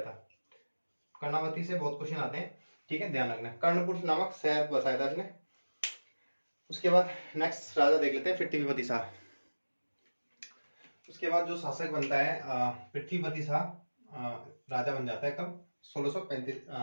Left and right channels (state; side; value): inverted; both; correlation -1.00